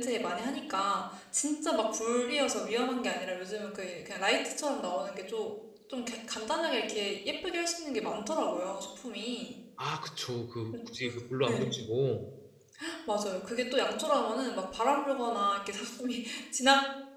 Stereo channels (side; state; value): both; identical; correlation 1.00